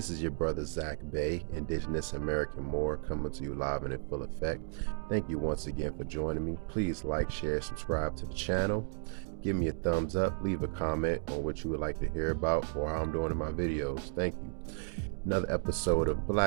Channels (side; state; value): left; silent; digital silence